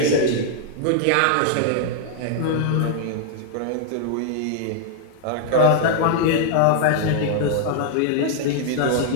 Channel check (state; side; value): different; both; correlation 0.00